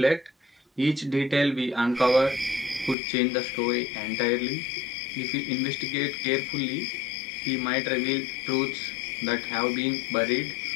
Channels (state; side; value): drops out; right; at 3.0 s